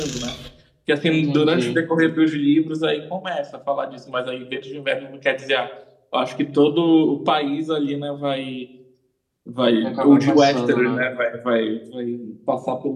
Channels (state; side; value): identical; both; correlation 1.00